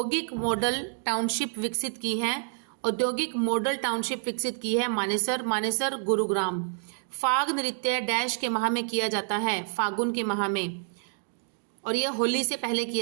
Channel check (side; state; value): left; silent; 59 dB below the other